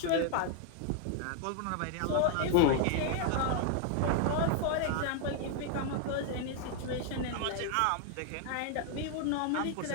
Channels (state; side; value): different; both; correlation 0.00